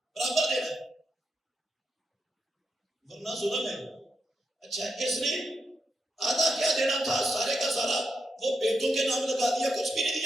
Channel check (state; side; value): normal; both; correlation 0.84